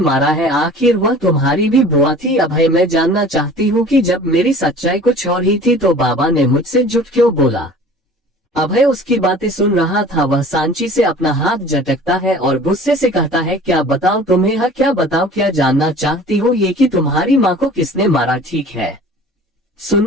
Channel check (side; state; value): both; normal; correlation 0.45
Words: है। आखिर वह तुम्हारी भी बुआ थी। अभय, मैं जानना चाहती हूँ कि जब मेरी सच्चाई कुछ और ही थी तो बाबा ने मुझसे झूठ क्यों बोला। अभय उसकी बातें सुन रहा था। वह सांची से अपना हाथ झटकता है और गुस्से से कहता है, क्या बताओ तुम्हें? हाँ, क्या बताओ? क्या जानना चाहती हो? ये कि तुम्हारी माँ को किसने मारा? ठीक है,